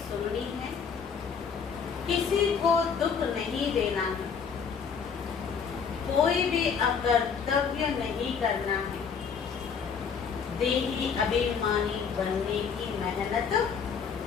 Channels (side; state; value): right; quieter; 6.4 dB